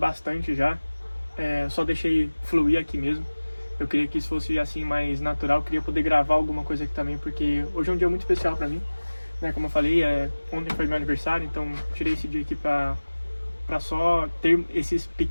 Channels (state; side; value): inverted; both; correlation -1.00